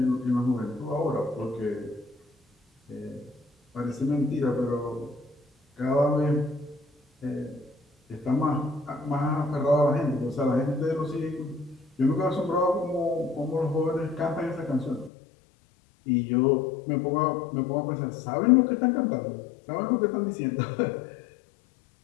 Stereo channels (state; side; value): drops out; right; at 15.1 s